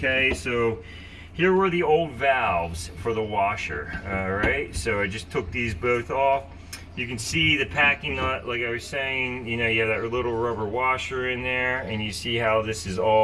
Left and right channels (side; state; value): both; identical; correlation 1.00